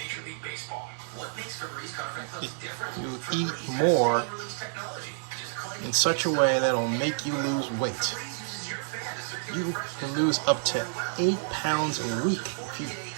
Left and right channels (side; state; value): left; silent; digital silence